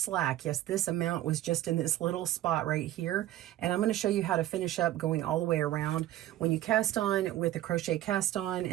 Yes, this amount was just in this little spot right here, and I'm going to show you how to finish up going all the way around. When you cast on with a crochet cast on,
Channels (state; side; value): quieter; left; 13.9 dB